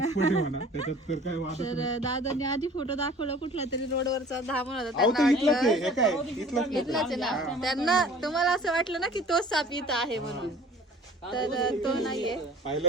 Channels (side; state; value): both; normal; correlation 0.48